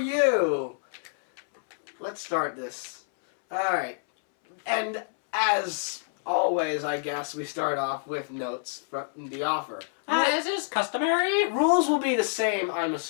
Let's start this. Alright. And as always, I guess, we start off with notes from the offer. As is customary. Rules will be the same, I'm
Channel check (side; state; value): right; silent; 60 dB below the other